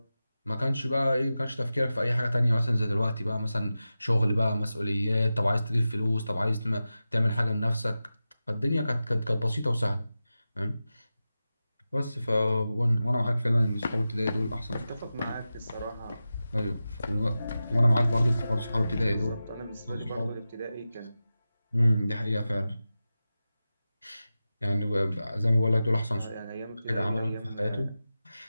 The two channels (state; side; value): inverted; both; correlation -0.94